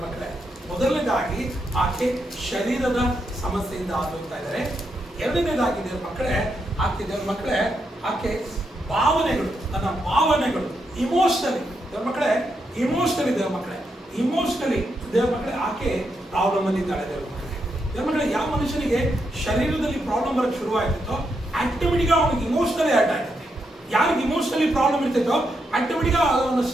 ಮಕ್ಕಳೇ. ಮೊದಲನೇದಾಗಿ ಆಕೆ ಶರೀರದ ಸಮಸ್ಯೆಯಿಂದ ಆಗೋಯ್ತಾ ಇದ್ದಾರೆ. ಎರಡನೇದಾಗಿ ದೇವರ ಮಕ್ಕಳೇ, ಆಕೆ ದೇವರ ಮಕ್ಕಳೇ ಆಕೆ ಭಾವನೆಗಳು, ತನ್ನ ಭಾವನೆಗಳು ಇಮೋಷನಲಿ ದೇವರ ಮಕ್ಕಳೇ, ಇಮೋಷನಲಿ ದೇವರ ಮಕ್ಕಳೇ, ಇಮೋಷನಲಿ ದೇವರ ಮಕ್ಕಳೇ ಆಕೆ ಪ್ರಾಬ್ಲಮ್ ಅಲ್ಲಿ ಇದ್ದಾಳೆ ದೇವರ ಮಕ್ಕಳೇ. ದೇವರ ಮಕ್ಕಳೇ, ಯಾವ ಮನುಷ್ಯನಿಗೆ ಶರೀರದಲ್ಲಿ ಪ್ರಾಬ್ಲಮ್ ಬರೋಕ್ಕೆ ಶುರುವಾಗ್ತಿತ್ತೋ ಆಟೋಮೆಟಿಕ್ ಅವನಿಗೆ ಇಮೋಷನಲಿ ಅಟ್ಯಾಕ್ ಆಗ್ತದೆ. ಯಾರಿಗೆ ಇಮೋಷನಲಿ ಪ್ರಾಬ್ಲಮ್ ಇರ್ತೈತೋ ಆಟೋಮೆಟಿಕ್ ಅವನ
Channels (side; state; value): both; normal; correlation 0.82